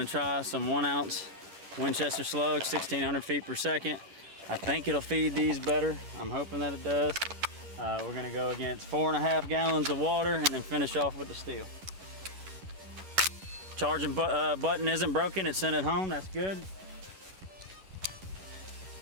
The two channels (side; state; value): left; late; 11 ms